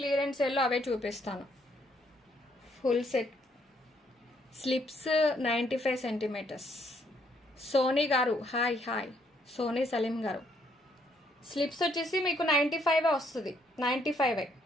సేల్లో అవే చూపిస్తాను. Full set slips 95 centimetres. Soni గారు హాయ్ హాయ్. సోనీ సలీం గారు స్లిప్స్ వచ్చేసి మీకు 95 వస్తుంది.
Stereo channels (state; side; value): normal; both; correlation 0.70